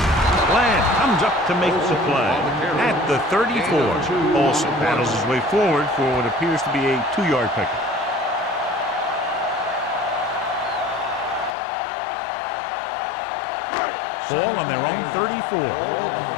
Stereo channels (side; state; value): right; drops out; at 11.6 s